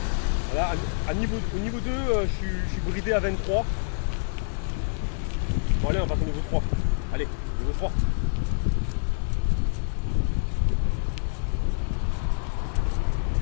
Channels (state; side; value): silent; right; digital silence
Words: Voilà, au niveau 2, je suis bridé à 23. Bon allez, on passe au niveau 3. Allez, niveau 3.